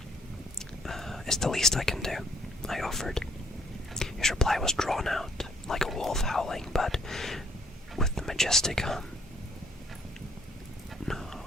"It's the least I can do," I offered. His reply was drawn out, like a wolf howling, but with the majestic hum. "No."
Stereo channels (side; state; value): both; normal; correlation 0.66